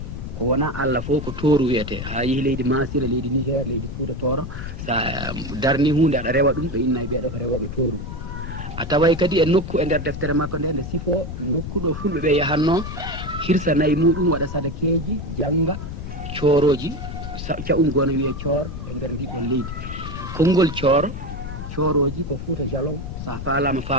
ko wona Allah fof ko tooru wiyete ha yehi leydi masira leydi niger leydi fuuta tooro sa darni hunde aɗa rewa ɗum ɓe innayi ɓeeɗo ko rewoɓe tooru a taway kadi e nokku e nder deftere makko nde nde sifo nokkuɗo fulɓe ɓe yahanno hirsa nayi muɗum waɗa sadakeji janga cooroji caɓum gono wiye coor e nder ndiɗɗon leydi konngol cooroji ko fuuta jalon sa faalama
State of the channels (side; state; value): left; noise; rumble, 8 dB below the sound